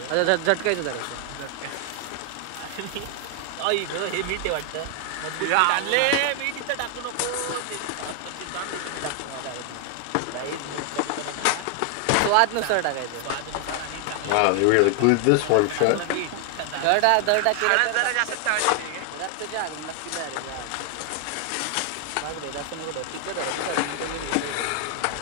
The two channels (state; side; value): different; both; correlation 0.00